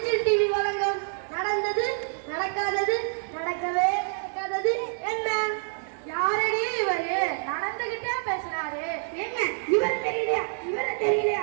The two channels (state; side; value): silent; left; 60 dB below the other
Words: டிவி வழங்கும் நடந்தது நடக்காதது நடக்கவே நடக்காதது என்ன. யாரடி இவரு? நடந்துகிட்டே பேசுறாரு. ஏங்க, இவரை தெரியலையா? இவரை